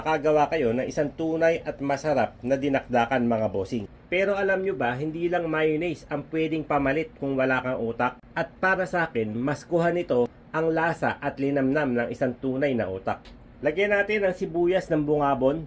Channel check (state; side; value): identical; both; correlation 1.00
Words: kayo ng isang tunay at masarap na dinakdakan mga bossing. Pero alam nyo ba, hindi lang mayonnaise ang pwedeng pamalit kung wala kang utak. At para sa akin, mas kuha nito ang lasa at linamnam ng isang tunay na utak. Lagyan natin ang sibuyas ng bungabon,